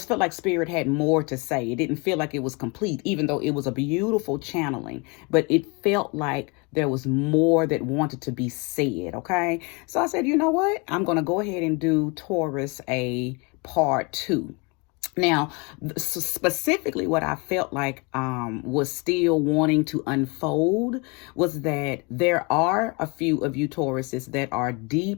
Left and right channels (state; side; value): quieter; right; 29.7 dB